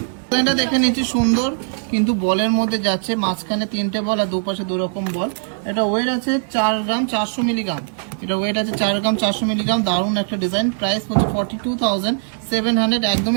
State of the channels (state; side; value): silent; left; 66 dB below the other